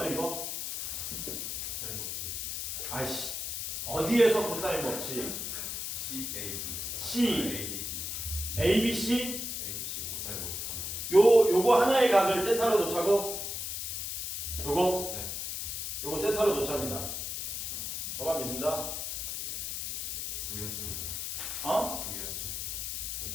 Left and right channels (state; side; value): noise; left; hiss, 4 dB below the sound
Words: 이거? 코사인 법칙. 아이씨 어디에서 코사인 법칙? CAB. C. ABC. ABC? ABC 코사인 법칙 하나. 요거 하나의 각을 세타로 놓자고? 요거? 네. 요거 세타로 놓자입니다. 너만 믿는다? 두개 합쳐서. 어? 두개 합쳐서.